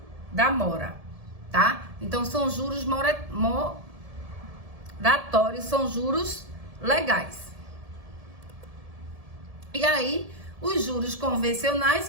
da mora, tá? Então, são juros moratórios, são juros legais. E aí, os juros convencionais,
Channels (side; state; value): left; late; 1.7 ms